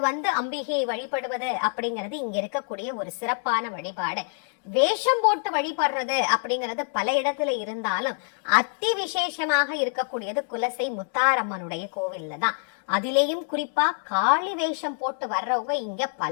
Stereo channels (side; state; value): right; silent; digital silence